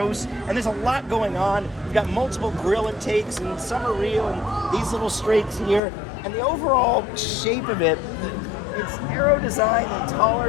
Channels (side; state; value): right; drops out; at 5.8 s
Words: And there's a lot going on. You've got multiple grill intakes, and some are real, and these little strakes here. And the overall shape of it, it's narrow design and